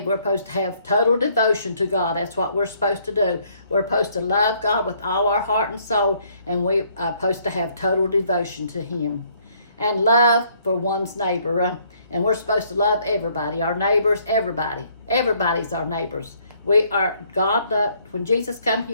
we're supposed to have total devotion to God. That's what we're supposed to do. We're supposed to love God with all our heart and soul, and we're supposed to have total devotion to Him. And love for one's neighbor. And we're supposed to love everybody, our neighbors, everybody. Everybody's our neighbors. We are, God loved, when Jesus come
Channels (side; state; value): both; inverted; correlation -0.66